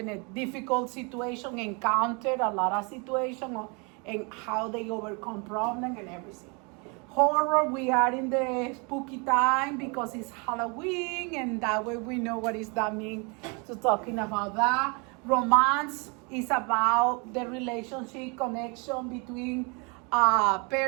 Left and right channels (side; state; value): left; quieter; 31.9 dB